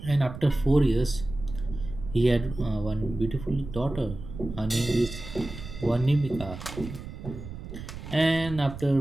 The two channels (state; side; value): noise; right; rumble, 11 dB below the sound